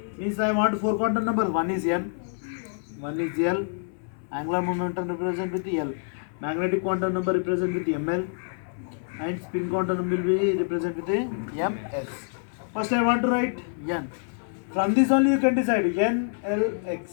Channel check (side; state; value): right; silent; 60 dB below the other